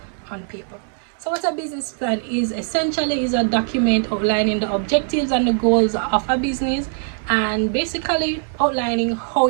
on paper. So what a business plan is essentially is a document outlining the objectives and the goals of a business and basically outlining how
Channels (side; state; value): left; silent; 59 dB below the other